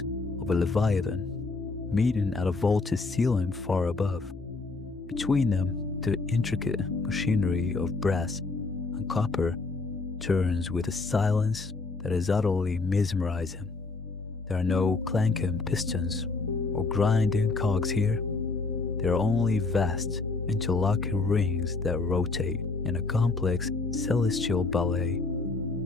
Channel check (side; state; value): right; quieter; 3.8 dB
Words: of a leviathan, meeting at a vaulted ceiling far above. Between them, the intricate machinery of brass and copper turns with a silence that is utterly mesmerizing. There are no clanking pistons or grinding cogs here. There are only vast, interlocking rings that rotate in a complex celestial ballet,